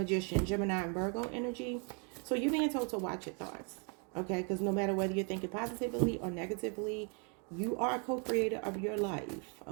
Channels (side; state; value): left; quieter; 38.0 dB